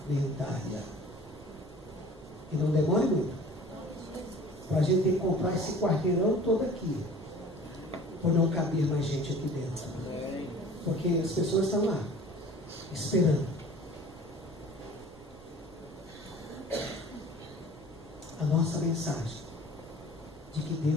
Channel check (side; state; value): both; normal; correlation 0.46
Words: E não demore muito, para a gente ter que comprar esse quarteirão todo aqui, por não caber mais gente aqui dentro. Porque as pessoas estão lá, esperando. A nossa mensagem de que